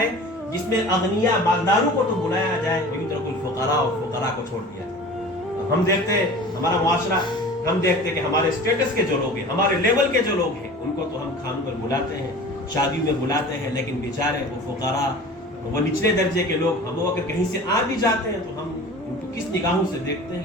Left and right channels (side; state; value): both; normal; correlation 0.40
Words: جس میں اغنیاء مالداروں کو تو بلایا جائے، ویترک الفقراء، اور فقراء کو چھوڑ دیا جائے۔ ہم دیکھتے ہیں ہمارا معاشرہ، ہم دیکھتے ہیں کہ ہمارے اسٹیٹس کے جو لوگ ہیں، ہمارے لیول کے جو لوگ ہیں، ان کو تو ہم کھانوں پر بلاتے ہیں، شادی میں بلاتے ہیں، لیکن بیچارے وہ فقراء، وہ نچلے درجے کے لوگ، ہم اگر کہیں سے آ بھی جاتے ہیں تو ہم ان کو کس نگاہوں سے دیکھتے ہیں،